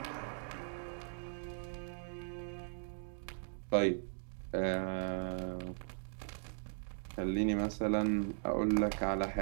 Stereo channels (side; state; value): left; silent; digital silence